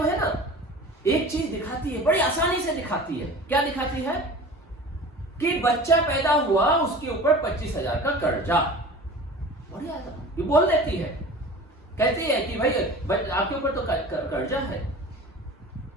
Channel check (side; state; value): both; normal; correlation 0.39